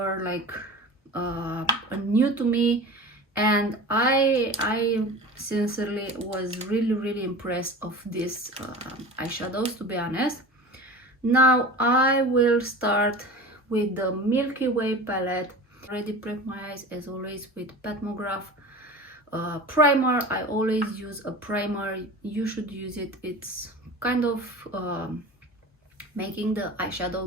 like new to me, and I sincerely was really impressed of these eyeshadows, to be honest. Now I will start with the Milky Way palette. Already prep my eyes as always with Petmograph primer. I always use a primer. You should use it. It's kind of making the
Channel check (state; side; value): normal; both; correlation 0.35